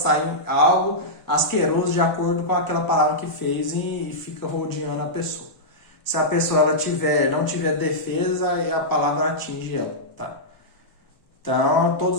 algo asqueroso de acordo com aquela palavra que fez e fica rodeando a pessoa. Se a pessoa ela não tiver defesa, aí a palavra atinge ela, tá? Então,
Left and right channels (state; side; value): late; right; 1.0 ms